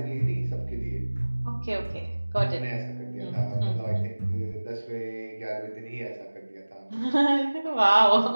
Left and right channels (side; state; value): both; inverted; correlation -1.00